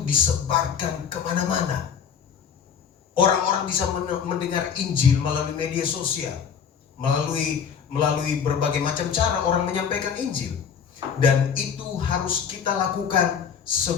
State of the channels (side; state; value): right; quieter; 7.3 dB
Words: kemana-mana. Orang-orang bisa mendengar Injil melalui media sosial, melalui berbagai macam cara orang menyampaikan Injil. Dan itu harus kita lakukan